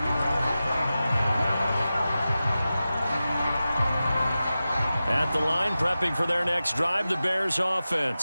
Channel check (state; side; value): inverted; both; correlation -0.94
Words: At the line, prepping for their next drive, the Bears